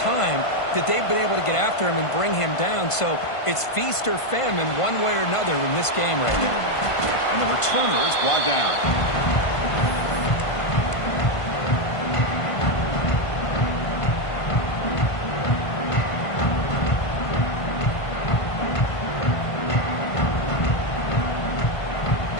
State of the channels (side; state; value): right; late; 1.5 ms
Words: that they've been able to get after him and bring him down, so it's feast or famine one way or another in this game right now. And the returner is brought down.